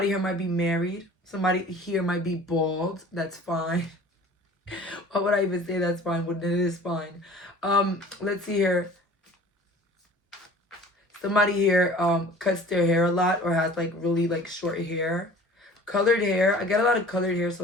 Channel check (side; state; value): both; normal; correlation 0.46